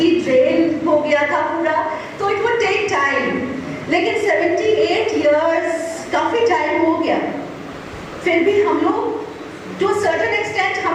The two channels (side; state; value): both; identical; correlation 1.00